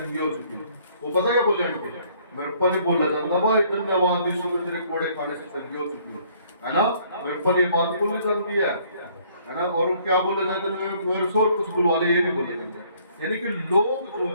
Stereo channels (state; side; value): inverted; both; correlation -0.62